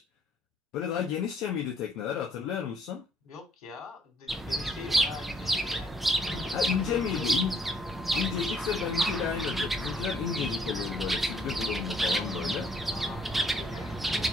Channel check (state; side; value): normal; both; correlation 0.66